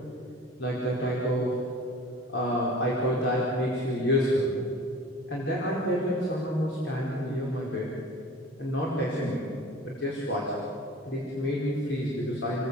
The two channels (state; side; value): normal; both; correlation 0.43